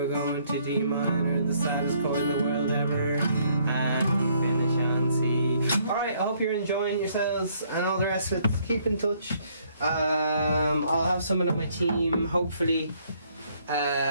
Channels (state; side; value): inverted; both; correlation -0.66